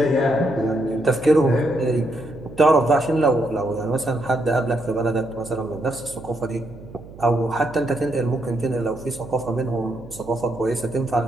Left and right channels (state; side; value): noise; right; hum, 17 dB below the sound